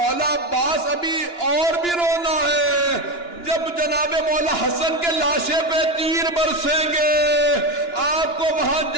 عباس ابھی اور بھی رونا ہے، جب جناب مولا حسن کے لاشے پہ تیر برسیں گے آپ کو وہاں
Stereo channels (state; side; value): late; right; 2.9 ms